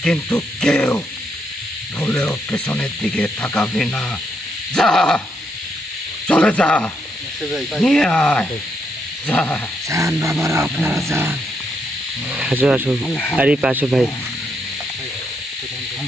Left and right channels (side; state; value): both; normal; correlation 0.78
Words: কিন্তু কেউ ভুলেও পেছনের দিকে তাকাবি না। যা, চলে যা, নিয়ে আয়, যা। যান বাবারা, আপনারা যান। আসো আসো, আরিফ আসো ভাই।